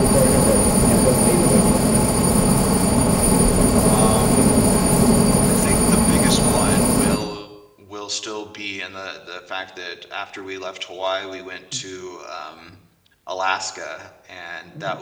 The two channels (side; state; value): both; identical; correlation 1.00